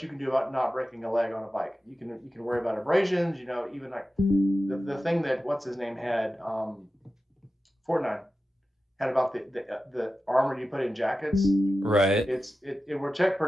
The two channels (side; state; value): both; normal; correlation 0.93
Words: you can do about not breaking a leg on a bike. You can worry about abrasions. Even like the thing that what's his name had, Fortnite had about the armor you put in jackets. Right. It will